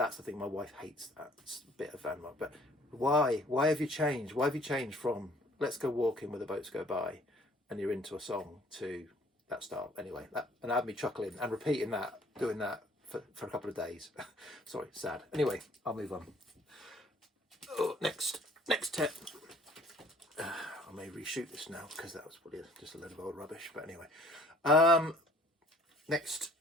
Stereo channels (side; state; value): both; normal; correlation 0.57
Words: the thing, my wife hates that bit of Van Morrison. But why have you changed? Why have you changed from "Let's go walking where the boats go by" and you're into a song to that style? Anyway, and had me chuckling and repeating that, doing that for a couple of days. Sorry, sad. Anyway, I'll move on. Oh, next tip. I may reshoot this now because that was probably just a load of old rubbish. But anyway, next